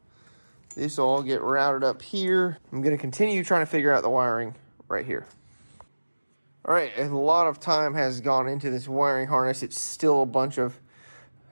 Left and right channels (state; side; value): inverted; both; correlation -1.00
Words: this will all get routed up here. I'm going to continue trying to figure out the wiring right here. All right, a lot of time has gone into this wiring harness. It's still a